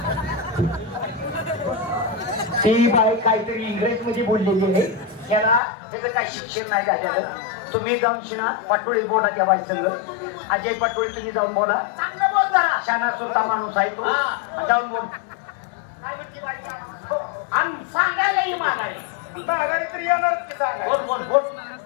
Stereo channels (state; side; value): drops out; right; at 5.6 s